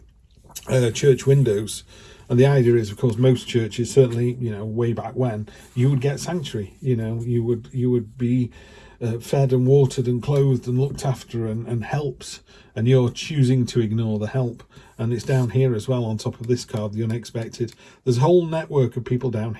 church windows, and the idea is, of course, most churches, certainly, you know, way back when, you would get sanctuary, you know, you would be fed and watered and clothed and looked after and helped, and you're choosing to ignore the help. And it's down here as well, on top of this card, the unexpected. There's a whole network of people down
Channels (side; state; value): both; identical; correlation 1.00